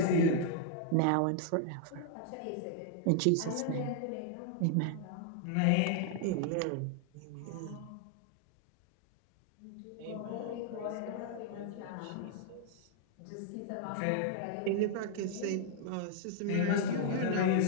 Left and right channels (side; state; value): both; different; correlation 0.00